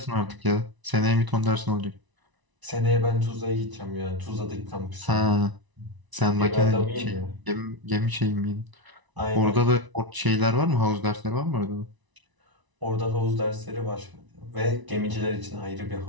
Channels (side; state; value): left; late; 1.0 ms